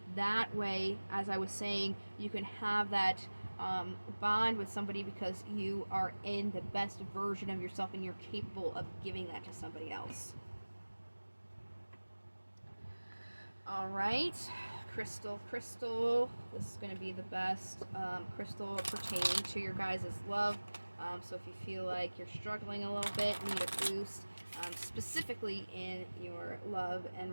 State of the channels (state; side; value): inverted; both; correlation -1.00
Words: That way, as I was saying, you can have that bond with somebody because you are in the best version of yourself and you're capable of giving that to somebody else. All right, crystal. This is going to be the best crystal pertaining to your guys' love. So if you feel like you're struggling a little bit, need a boost, specifically in your love